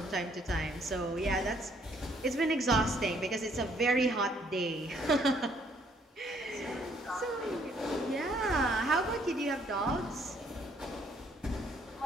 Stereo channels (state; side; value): normal; both; correlation 0.66